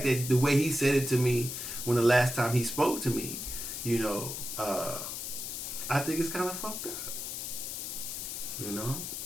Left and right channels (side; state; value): left; noise; hiss, 5 dB below the sound